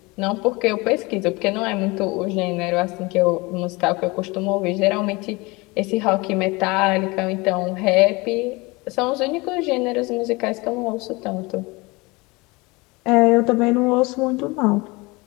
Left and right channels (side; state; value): right; quieter; 24.5 dB